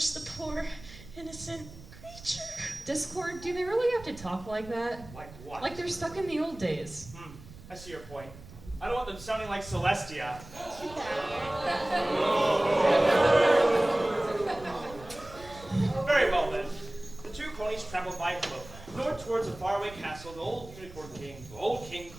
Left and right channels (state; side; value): noise; right; rumble, 18 dB below the sound